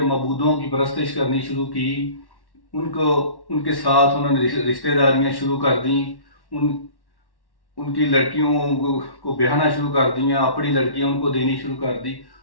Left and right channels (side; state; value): right; late; 1.1 ms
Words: معبودوں کی پرستش کرنی شروع کی، ان کے ساتھ انہوں نے رشتہ داریاں شروع کر دیں، ان کی لڑکیوں کو بیاہنا شروع کر دیا، اپنی لڑکیاں ان کو دینی شروع کر دی،